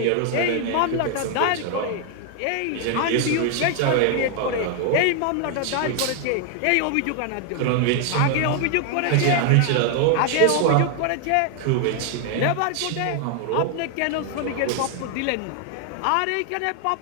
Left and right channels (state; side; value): different; both; correlation 0.00